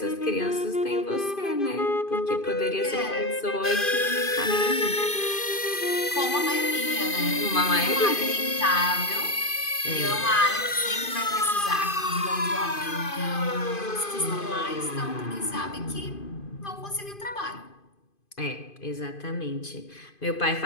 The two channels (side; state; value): right; late; 2.5 ms